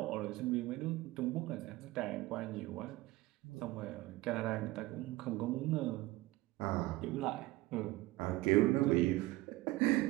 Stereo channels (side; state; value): left; quieter; 18.9 dB